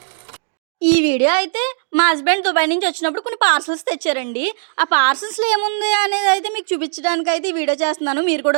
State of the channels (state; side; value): silent; left; digital silence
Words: ఈ వీడియో అయితే మా హస్బెండ్ దుబాయ్ నుంచి వచ్చినప్పుడు కొన్ని పార్సల్స్ తెచ్చారండి. ఆ పార్సల్స్లో ఏముంది అనేది అయితే మీకు చూపించడానికి అయితే ఈ వీడియో చేస్తున్నాను, మీరు